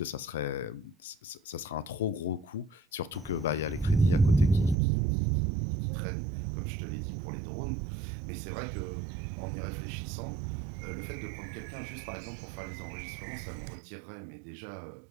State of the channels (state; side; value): drops out; left; at 4.8 s